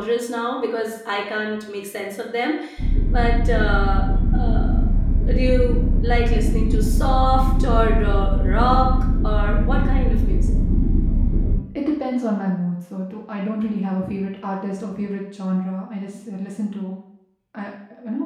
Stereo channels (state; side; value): identical; both; correlation 1.00